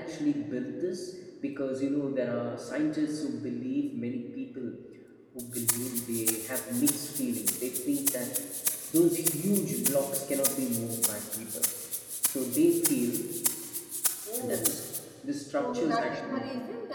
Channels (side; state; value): both; identical; correlation 1.00